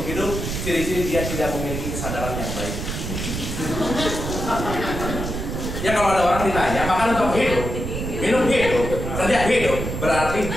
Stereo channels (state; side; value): noise; right; rumble, 4 dB below the sound